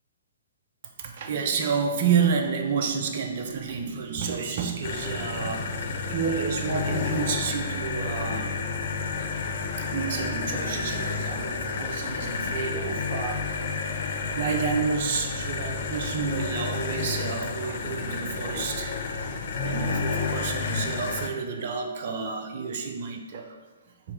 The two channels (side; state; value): both; inverted; correlation -0.38